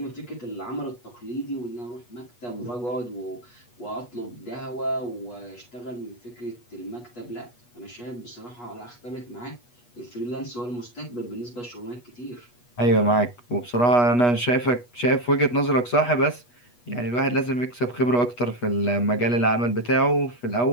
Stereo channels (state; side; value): late; right; 8.3 ms